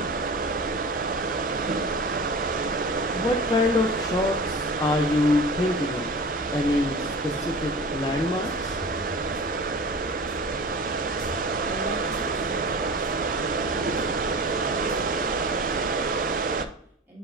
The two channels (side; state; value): both; normal; correlation 0.36